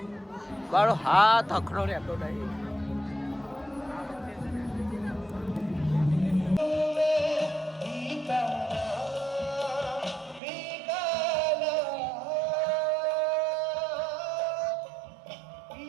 મારો હાથ અખડો રહેતો નહીં.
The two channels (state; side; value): drops out; left; at 10.4 s